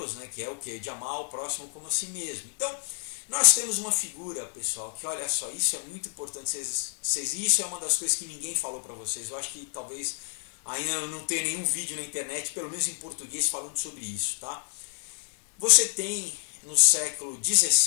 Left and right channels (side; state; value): right; silent; 59 dB below the other